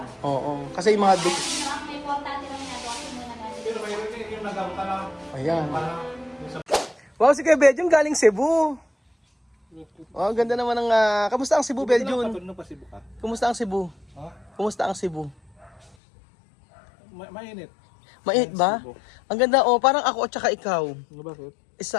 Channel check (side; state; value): right; drops out; at 16.0 s